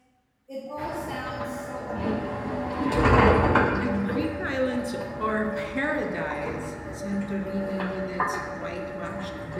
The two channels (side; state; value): both; identical; correlation 1.00